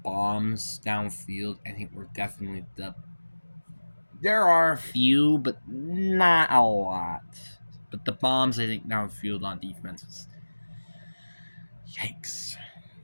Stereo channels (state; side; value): inverted; both; correlation -1.00